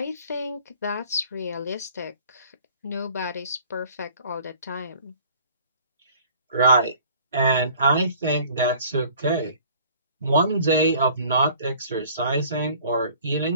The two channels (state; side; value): inverted; both; correlation -0.52